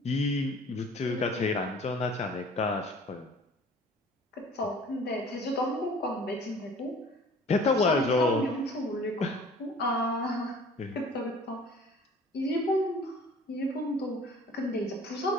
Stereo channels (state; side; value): normal; both; correlation 0.49